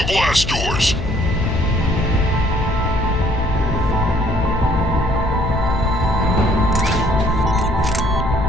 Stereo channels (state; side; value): noise; left; hum, 5 dB below the sound